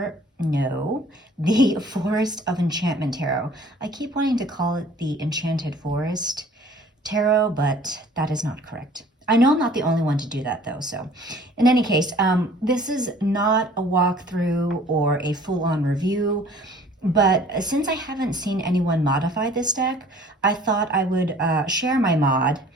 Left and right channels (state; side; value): normal; both; correlation 0.51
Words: the Forest of Enchantment Tarot. I keep wanting to call it the Enchanted Forest Tarot, but that is not correct. I know I'm not the only one to do that though, so in any case, this is not a walkthrough or a full-on review. But since I haven't seen anyone modify this deck, I thought I would share my mod